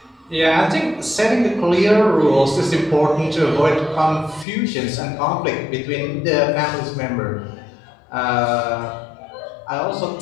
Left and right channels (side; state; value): right; drops out; at 4.5 s